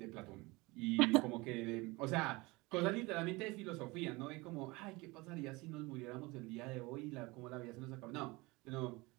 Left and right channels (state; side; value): quieter; left; 23.5 dB